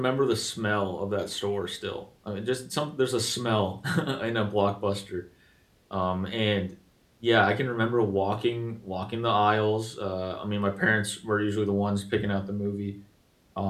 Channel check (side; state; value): both; identical; correlation 1.00